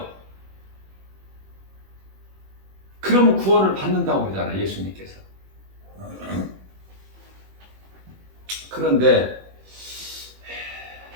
그러면 구원을 받는다고 그러잖아, 예수님께서. 그런데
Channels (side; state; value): left; late; 21 ms